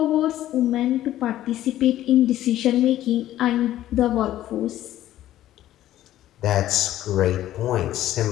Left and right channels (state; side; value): quieter; right; 13.4 dB